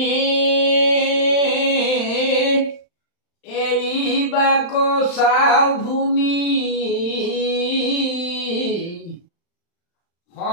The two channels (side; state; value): right; late; 35 ms